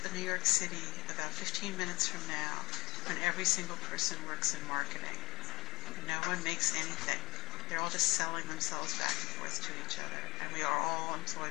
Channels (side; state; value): right; quieter; 20.1 dB